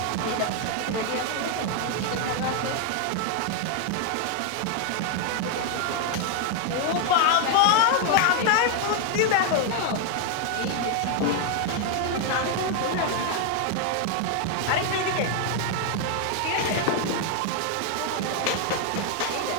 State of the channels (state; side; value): different; both; correlation 0.00